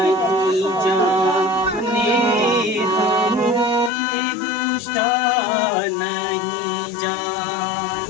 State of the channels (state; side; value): drops out; right; at 3.9 s